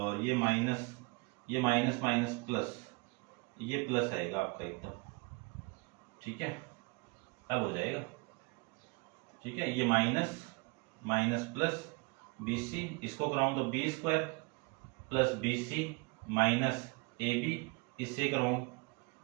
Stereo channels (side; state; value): left; quieter; 28.8 dB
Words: ये माइनस माइनस प्लस, ये प्लस आएगा आपका एकदम, ठीक है, अब हो जाएगा, ठीक है। ये minus minus plus B C, इसको कराऊं तो B square plus B C minus A B, इससे कराऊं